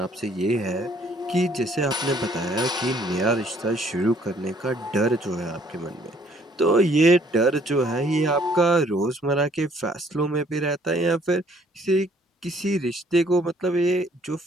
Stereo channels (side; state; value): both; normal; correlation 0.62